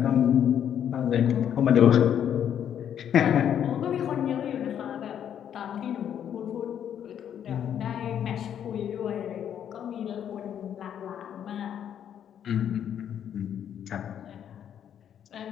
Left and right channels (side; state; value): right; quieter; 9.4 dB